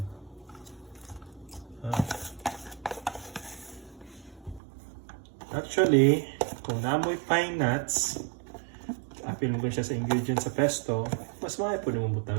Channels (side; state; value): left; drops out; at 4.6 s